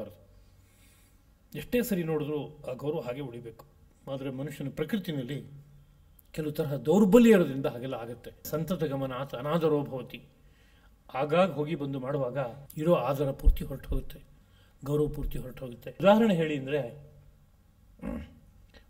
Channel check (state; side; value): identical; both; correlation 1.00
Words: ಎಷ್ಟೇ ಸರಿ ನೋಡಿದ್ರೂ ಆ ಗೌರವ ಹಾಗೆ ಉಳಿಬೇಕು. ಆದರೆ ಮನುಷ್ಯನ ಪ್ರಕೃತಿನಲ್ಲಿ ಕೆಲವು ತರಹ ದೌರ್ಬಲ್ಯ ಇರೋದ್ರಿಂದ ಹಾಗೆಲ್ಲ ಆಗುತ್ತೆ. ಸಂತತ ಗಮನ ಆತ ಅನಾದರೋ ಭವತಿ. ಆಗಾಗ ಹೋಗಿ ಬಂದು ಮಾಡುವಾಗ ಇರೋ ಆದರ ಪೂರ್ತಿ ಹೊರಟು ಹೋಗುತ್ತೆ, ಗೌರವ ಪೂರ್ತಿ ಹೊರಟು ಹೋಗುತ್ತೆ. ಉದಾಹರಣೆ ಹೇಳಿ ಅಂದರೆ,